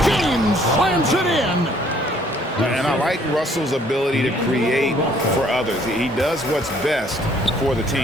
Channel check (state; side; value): normal; both; correlation 0.62